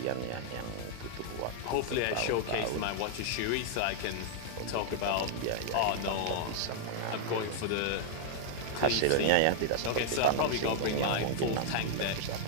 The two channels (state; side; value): different; both; correlation -0.01